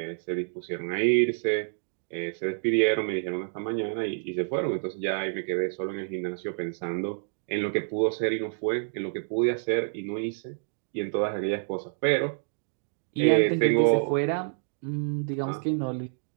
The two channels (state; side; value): silent; left; digital silence